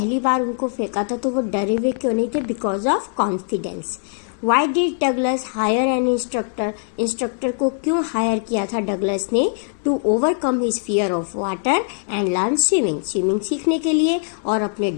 बार उनको फेंका था तो वो डरे हुए क्यों नहीं थे? Because of confidence. Why did Douglas hire an instructor? Instructor को क्यों हायर किया था डगलस ने? To overcome his fear of water and learn swimming. Swimming सीखने के लिए और अपने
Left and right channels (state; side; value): silent; right; digital silence